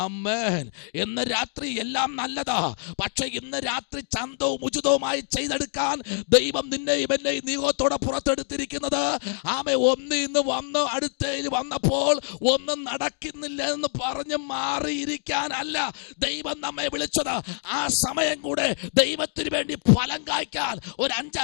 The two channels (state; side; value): silent; right; digital silence